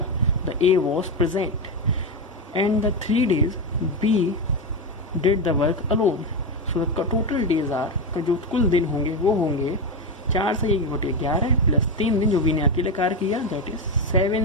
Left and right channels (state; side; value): normal; both; correlation 0.12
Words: The A was present and the 3 days B did the work alone. So the total days are, जो कुल दिन होंगे वो होंगे 4 से 1/11 प्लस 3 दिन जो बी ने अकेले कार्य किया, दैट इज